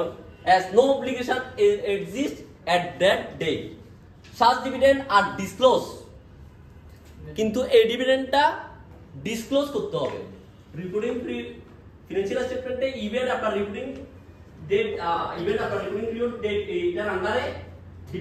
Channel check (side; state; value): both; identical; correlation 1.00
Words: as no obligation exists at that date. Such dividend are disclosed, কিন্তু এই ডিভিডেন্ডটা ডিসক্লোজ করতে হবে রিপোর্টিং ফিনান্সিয়াল স্টেটমেন্টে ইভেন্ট আপনার রিপোর্টিং ডেট, ইভেন্ট আপনার রিপোর্টিং পিরিয়ড ডেট এইটার আন্ডারে